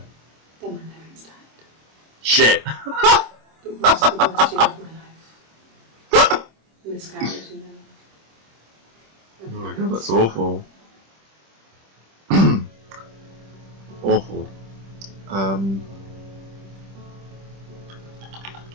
Then my parents died. Shit. It was the worst year of my life. Miscarriage, you know. Oh my god, that's awful. Awful.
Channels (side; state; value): left; late; 26 ms